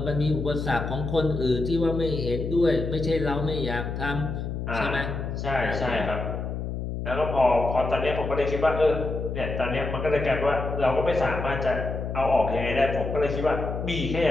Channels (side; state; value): left; noise; hum, 4 dB below the sound